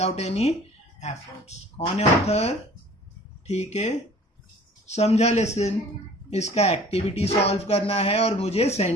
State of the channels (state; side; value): normal; both; correlation 0.49